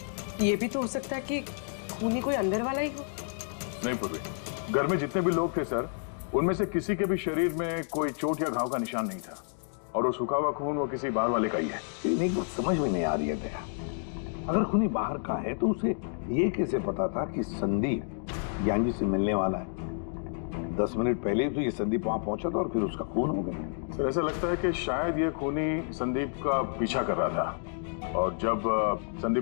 ये भी तो हो सकता है कि खूनी कोई अंदर वाला ही हो। नहीं पूर्वी, घर में जितने भी लोग थे सर, उनमें से किसी के भी शरीर में कोई चोट या घाव का निशान नहीं था, और वो सूखा हुआ खून वो किसी बाहर वाले का ही है। एक बात समझ में नहीं आ रही है दया, अगर खूनी बाहर का है तो उसे ये कैसे पता था कि संदीप ज्ञान जी से मिलने वाला है? 10 मिनट पहले ही तो ये संदीप वहां पहुंचा था और फिर उसका खून हो गया। सर ऐसा लगता है कि शायद ये खूनी संदीप का पीछा कर रहा था, और जब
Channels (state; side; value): silent; right; digital silence